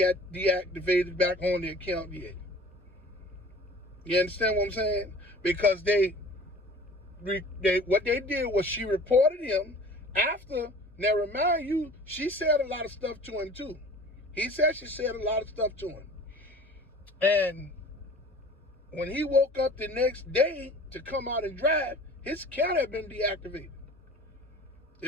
deactivated back on the account yet. You understand what I'm saying? Because what they did was she reported him after. Now remind you, she said a lot of stuff to him too. He said she said a lot of stuff to him. And when he woke up the next day to come out and drive, his account had been deactivated.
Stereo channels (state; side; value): normal; both; correlation 0.44